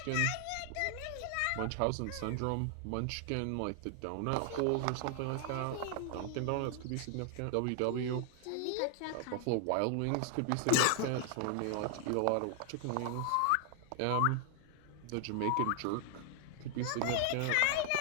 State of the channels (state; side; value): different; both; correlation 0.00